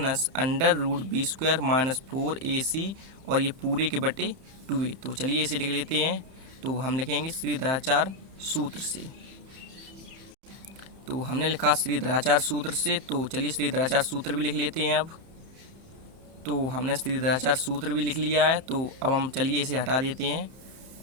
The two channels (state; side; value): late; left; 31 ms